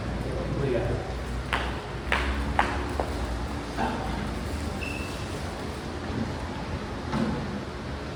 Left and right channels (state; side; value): identical; both; correlation 1.00